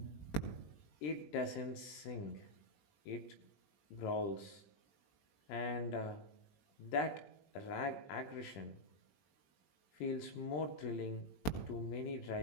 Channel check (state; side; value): late; right; 20 ms